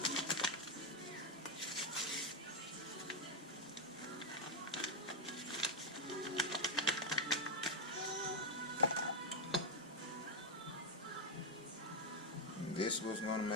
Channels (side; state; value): both; normal; correlation 0.03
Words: And this was going to